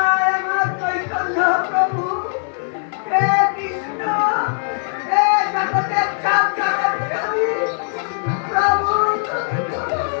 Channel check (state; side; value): silent; right; digital silence